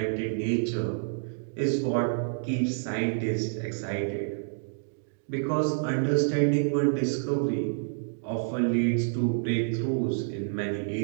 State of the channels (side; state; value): left; silent; digital silence